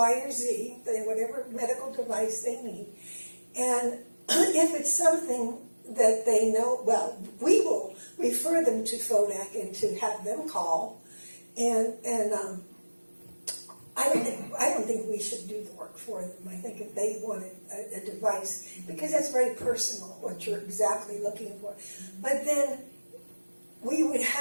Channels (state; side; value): inverted; both; correlation -1.00